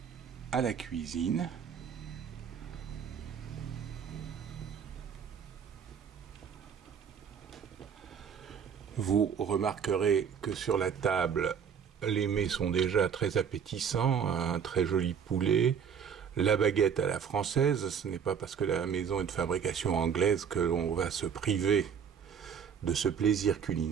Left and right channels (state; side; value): quieter; left; 7.4 dB